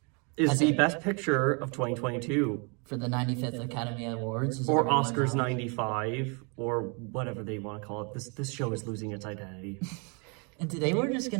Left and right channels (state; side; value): quieter; left; 34.3 dB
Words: is the best picture of 2022. For the 95th Academy Awards. Or Oscars 95, or whatever they want to call it. This show is losing its identity. And today we're just